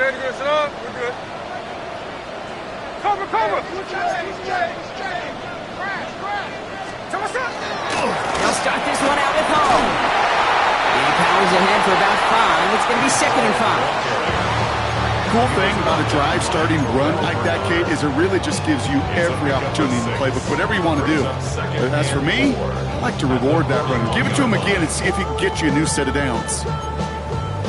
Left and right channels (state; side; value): identical; both; correlation 1.00